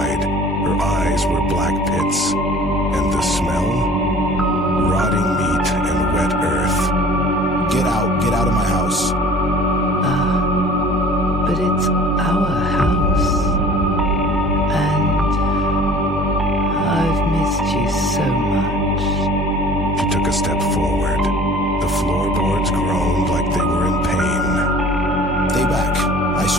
Her eyes were black pits. And the smell? Rotting meat and wet earth. Get out of my house. But it's our house. And I've missed you so much. She took a step forward. The floorboards groaned like they were in pain. Stay back. I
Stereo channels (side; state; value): both; normal; correlation 0.47